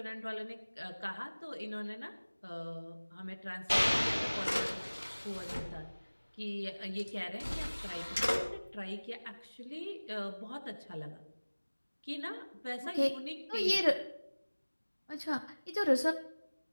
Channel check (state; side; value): inverted; both; correlation -1.00